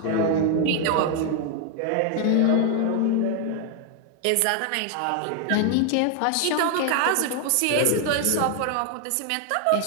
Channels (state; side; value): different; both; correlation 0.00